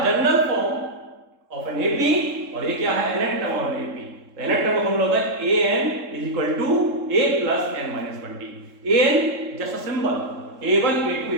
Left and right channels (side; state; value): left; late; 3.7 ms